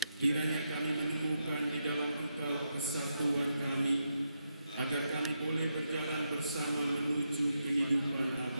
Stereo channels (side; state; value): both; inverted; correlation -0.83